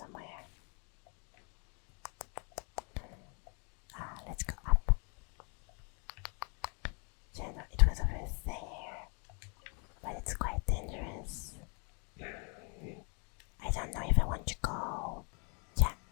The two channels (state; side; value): quieter; right; 36.2 dB